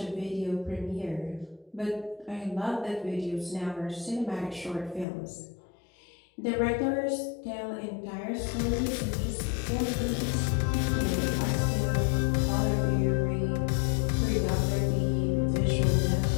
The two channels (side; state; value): right; drops out; at 5.1 s